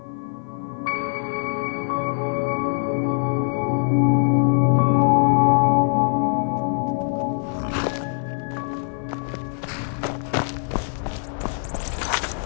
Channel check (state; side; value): silent; right; 55 dB below the other